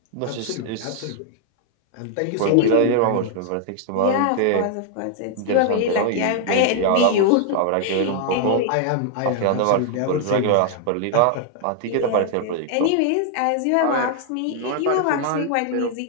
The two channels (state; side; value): different; both; correlation 0.00